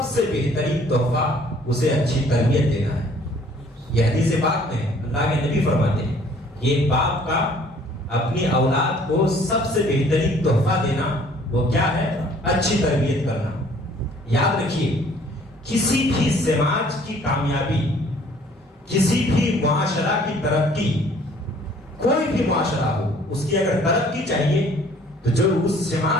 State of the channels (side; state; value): both; normal; correlation 0.57